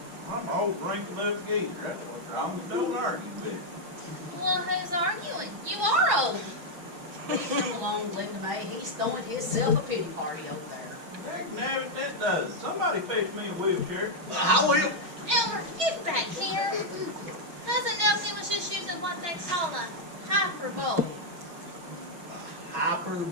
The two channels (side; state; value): left; late; 6.1 ms